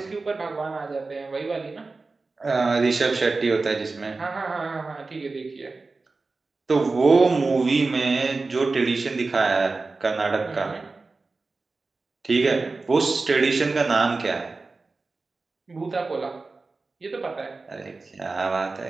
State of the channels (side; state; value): left; quieter; 3.8 dB